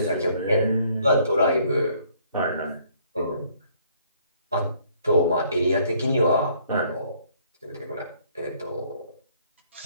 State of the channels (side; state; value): both; inverted; correlation -0.63